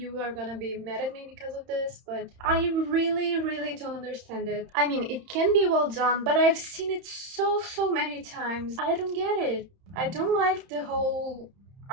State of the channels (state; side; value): late; left; 31 ms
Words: are gonna be mad at me because of this, but I really don't understand it. I mean, it can be well done, but I've seen it so many times. I don't get it. I don't like the whole